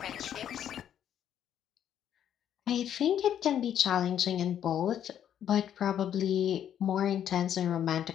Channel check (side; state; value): right; quieter; 9.9 dB